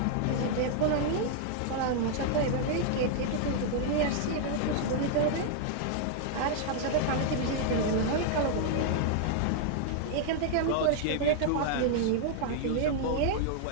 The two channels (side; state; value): both; different; correlation 0.00